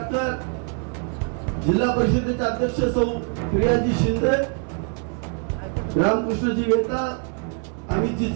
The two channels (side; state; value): left; quieter; 39.3 dB